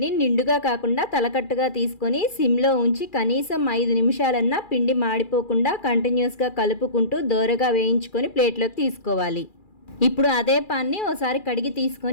నిండుగా కాకుండా తలకట్టుగా తీసుకొని సిమ్లో ఉంచి కనీసం 5 నిమిషాలన్నా పిండి మాడిపోకుండా కంటిన్యూస్గా కలుపుకుంటూ దోరగా వేయించుకొని ప్లేట్లోకి తీసుకోవాలి. ఇప్పుడు అదే పాన్ని ఓసారి కడిగి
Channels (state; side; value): late; right; 2.4 ms